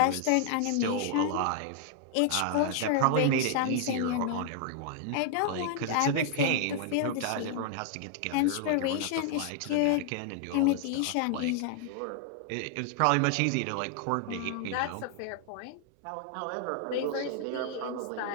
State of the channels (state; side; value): different; both; correlation 0.00